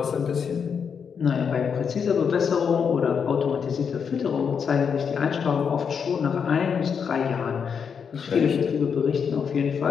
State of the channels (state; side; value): quieter; right; 6.7 dB